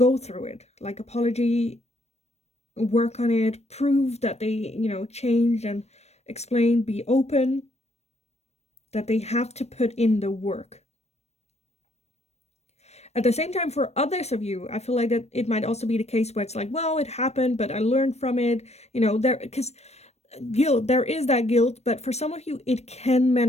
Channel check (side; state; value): right; late; 0.31 ms